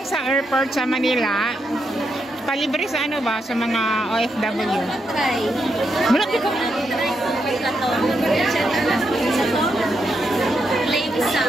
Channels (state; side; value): normal; both; correlation 0.82